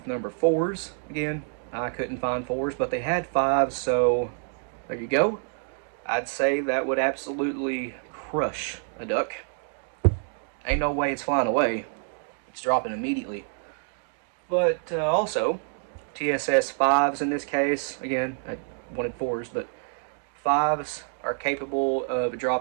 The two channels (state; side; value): silent; left; 60 dB below the other